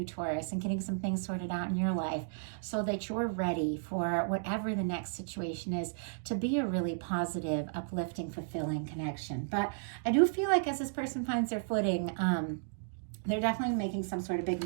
Taurus, and getting some things sorted out in your life so that you're ready for whatever the next situation is to be a really positive, uplifting, fulfilling connection. But I do feel like as this person finds their footing, they're definitely making some sort of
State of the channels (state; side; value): silent; left; digital silence